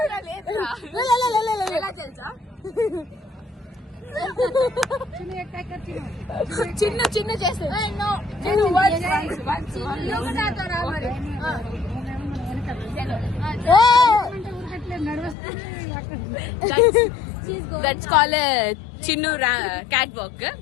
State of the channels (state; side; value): drops out; right; at 15.4 s